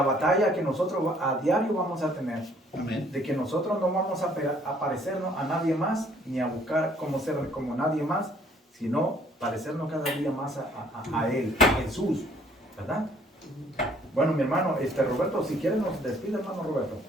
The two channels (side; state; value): both; normal; correlation 0.61